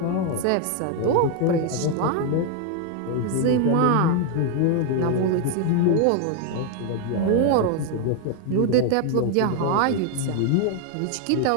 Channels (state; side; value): different; both; correlation 0.01